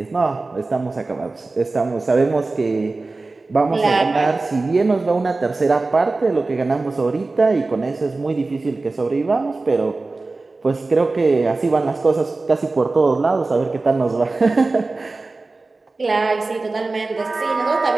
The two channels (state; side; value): quieter; left; 3.5 dB